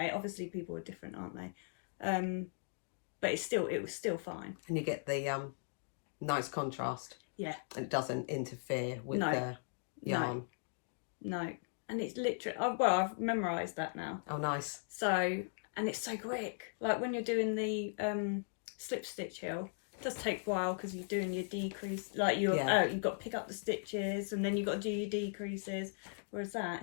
Obviously people are different, aren't they? But it was still fine. And you get the nice contrast. Yeah. And it doesn't interfere with the yarn. No. And it's literally... I've memorised that now. Oh, nice. So... And it's so quick. Like when you're doing the slip stitch hill, it does take a while because you're doing your decrease. Like you've got to pick up the stitches and then you've got to do your decreases. Whereas that,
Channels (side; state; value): right; silent; digital silence